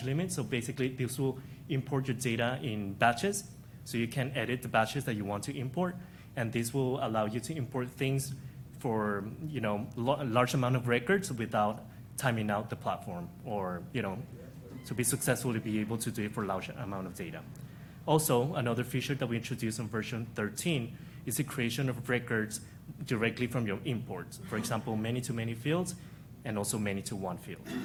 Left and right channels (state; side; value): identical; both; correlation 1.00